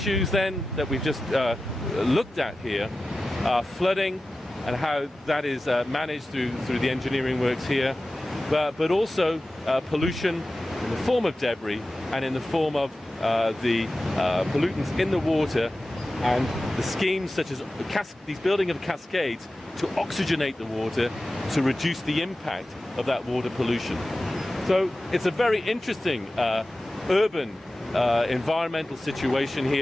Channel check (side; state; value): both; normal; correlation 0.95